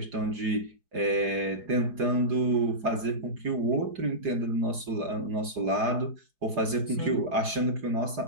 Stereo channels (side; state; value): left; late; 4.9 ms